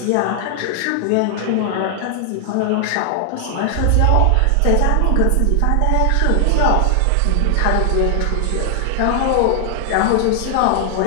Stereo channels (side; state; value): both; different; correlation 0.00